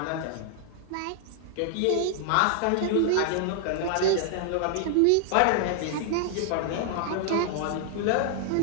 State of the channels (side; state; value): both; different; correlation 0.00